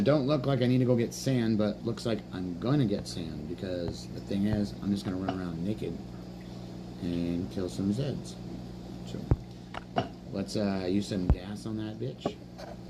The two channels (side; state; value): both; identical; correlation 1.00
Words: don't look like I need to go get sand, but looks like I'm gonna get sand, because the thing is, I'm just gonna run around naked and kill some Zeds. So let's use some gas on that bitch,